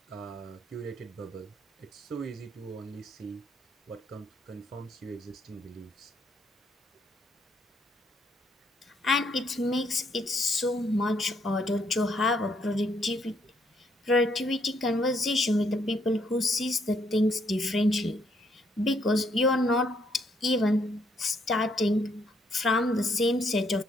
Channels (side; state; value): both; normal; correlation 0.72